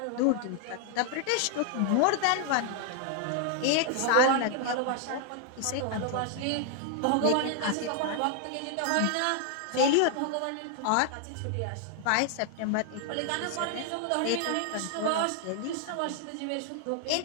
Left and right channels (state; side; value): different; both; correlation 0.00